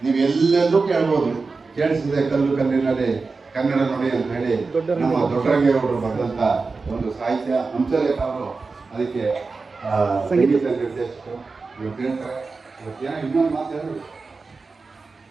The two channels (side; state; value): left; quieter; 4.2 dB